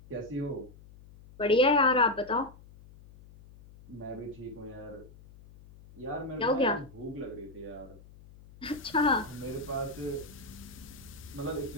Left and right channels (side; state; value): left; noise; hum, 21 dB below the sound